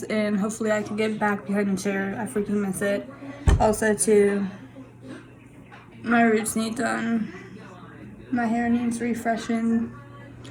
and hopefully I can get back behind the chair. I freaking miss it. Also, too, my roots need done. My hair needs refreshing,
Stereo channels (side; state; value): both; identical; correlation 1.00